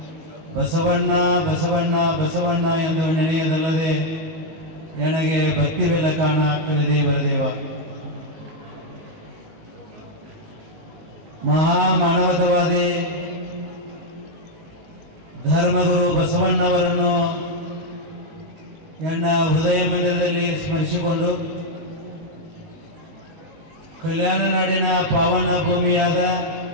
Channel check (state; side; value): late; left; 19 ms